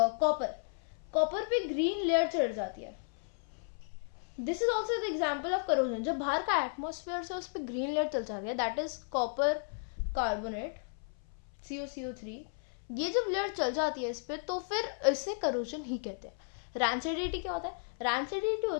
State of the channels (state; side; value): silent; right; 55 dB below the other